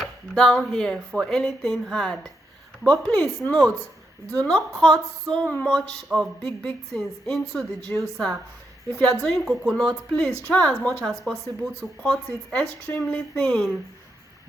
down here for anything hard. But please note, do not cut so much of big things into the juicer. If you are doing coconut, please try as much as possible to cut it extremely thin,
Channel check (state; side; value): normal; both; correlation 0.82